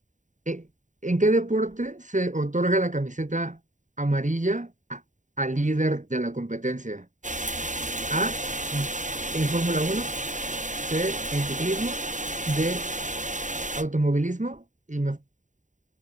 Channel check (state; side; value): late; left; 0.36 ms